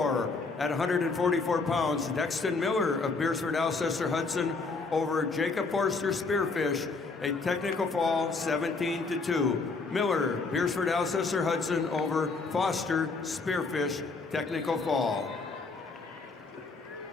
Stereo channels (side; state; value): right; quieter; 4.1 dB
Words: at 144 pounds. Dexton Miller of Beersford, Alcester, Hudson over Jacob Forster Spearfish, a technical fall 17-2. Miller, Beersford, Alcester, Hudson over Foster Spearfish, technical fall.